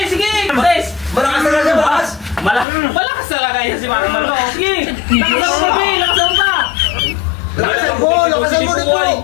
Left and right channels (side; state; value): right; drops out; at 2.7 s